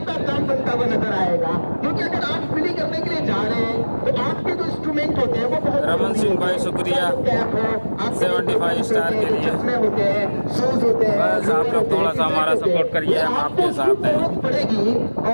काम बनता हुआ नजर आएगा। क्योंकि अगर आप फील्डिंग करने के लिए जा रहे हैं तो आपके जो इंस्ट्रूमेंट होते हैं वो बहुत रमन सिंह भाई शुक्रिया 75 स्टार के लिए। चश्मे होते हैं, शूज होते हैं, बस आप लोग थोड़ा सा हमारा सपोर्ट करिए, हम आपके साथ हैं। जरूरत पड़ेगी।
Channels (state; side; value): inverted; both; correlation -1.00